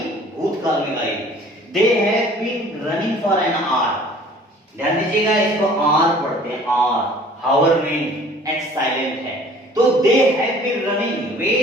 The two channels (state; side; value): normal; both; correlation 0.51